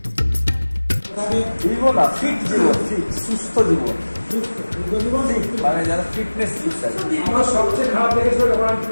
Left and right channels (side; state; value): both; inverted; correlation -1.00